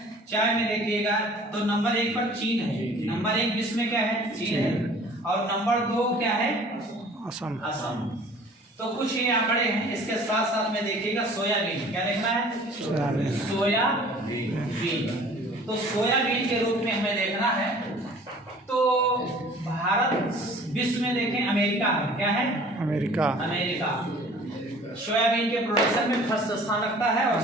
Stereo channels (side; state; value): both; normal; correlation 0.49